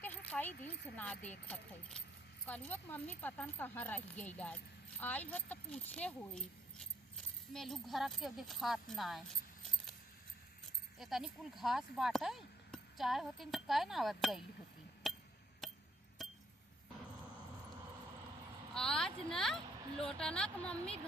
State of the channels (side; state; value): both; normal; correlation 0.69